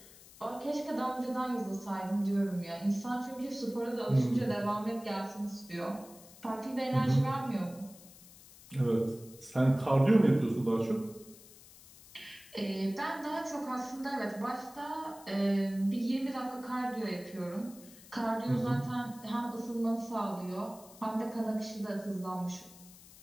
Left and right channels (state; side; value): noise; left; hiss, 21 dB below the sound